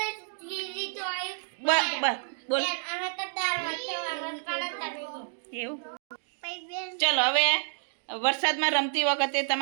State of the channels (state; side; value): silent; left; digital silence